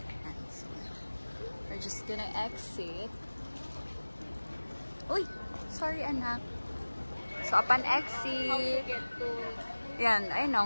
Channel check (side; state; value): both; inverted; correlation -1.00